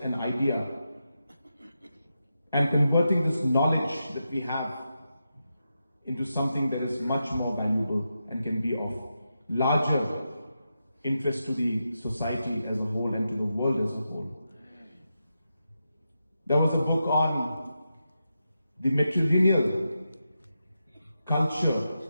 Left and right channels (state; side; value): inverted; both; correlation -0.88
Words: and idea, and converting this knowledge that we have into something that is much more valuable and can be of larger interest to the society as a whole and to the world as a whole. There was a book on the matrilineal culture